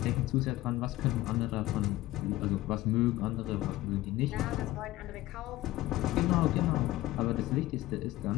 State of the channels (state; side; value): quieter; right; 16.9 dB